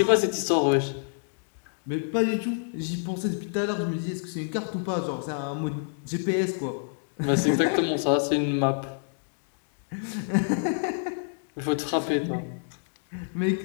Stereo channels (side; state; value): right; silent; digital silence